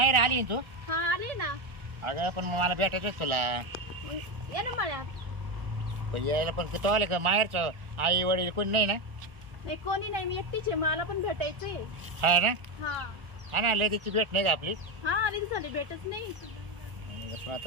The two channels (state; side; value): late; left; 1.4 ms